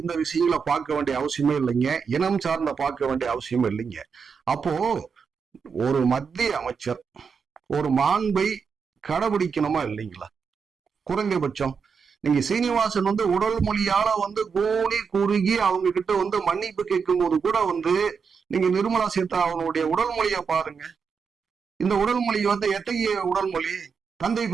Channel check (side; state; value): left; quieter; 5.9 dB